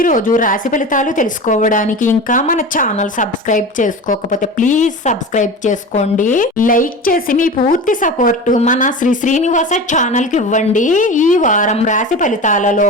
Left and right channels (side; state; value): both; normal; correlation 0.31